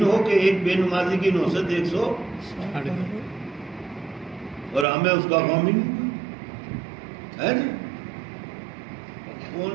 ہو کہ ایک بے نمازی کی نحوست 160 اور ہمیں اس کا غم ہی نہیں ہے جی۔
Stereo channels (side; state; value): left; drops out; at 4.9 s